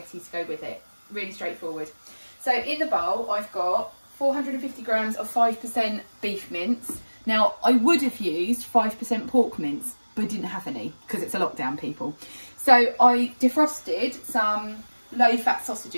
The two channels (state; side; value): inverted; both; correlation -1.00